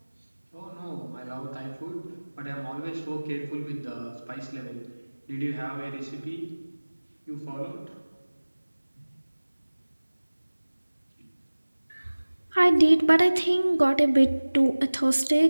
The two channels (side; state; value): both; inverted; correlation -1.00